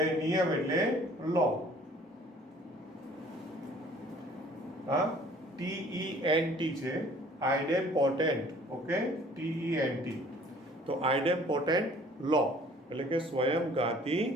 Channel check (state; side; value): normal; both; correlation 0.53